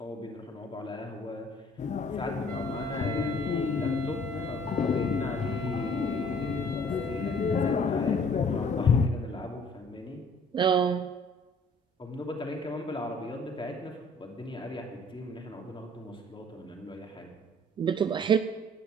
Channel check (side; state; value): both; normal; correlation 0.56